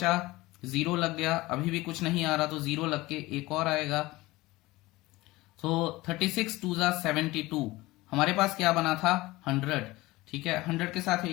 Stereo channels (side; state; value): right; quieter; 19.8 dB